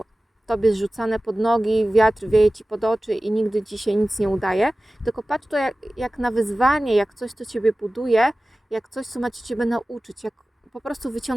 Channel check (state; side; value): normal; both; correlation 0.97